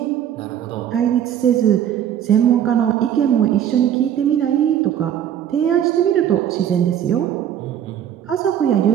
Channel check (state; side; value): quieter; left; 10.1 dB